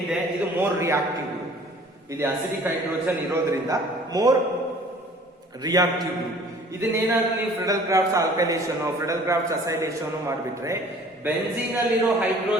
ಇದು ಮೋರ್ ರಿಯಾಕ್ಟಿವ್. ಇಲ್ಲಿ ಅಸಿಡಿಕ್ ಹೈಡ್ರೋಜನ್ ಇರೋದ್ರಿಂದ ಮೋರ್ ರಿಯಾಕ್ಟಿವ್ ಗ್ರೂಪ್. ಇದನ್ನೇನಾದ್ರೂ ನೀವು Friedel Crafts alkylation, Friedel Crafts acylation ಮಾಡಿಬಿಟ್ರೆ ಬೆಂಜೀನ್ ಅಲ್ಲಿರೋ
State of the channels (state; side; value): normal; both; correlation 0.51